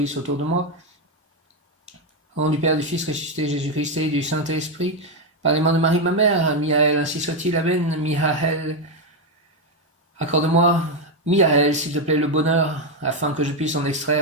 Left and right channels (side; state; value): both; normal; correlation 0.06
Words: autour de moi. Au nom du Père, du Fils ressuscité, Jésus-Christ et du Saint-Esprit, par les mains de Marie, ma mère, Miaël, ainsi soit-il, Amen. Miaël, accorde-moi, Miaël, s'il te plaît, le bonheur, afin que je puisse en